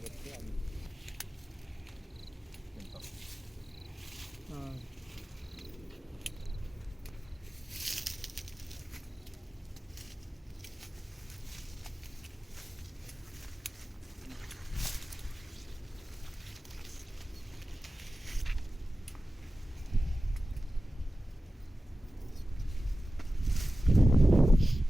ಇರ್ತಿ ಅದು ಹಾಂ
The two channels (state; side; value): normal; both; correlation 0.95